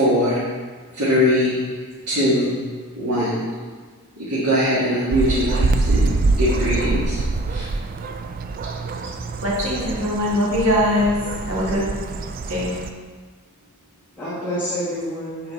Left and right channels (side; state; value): both; normal; correlation 0.41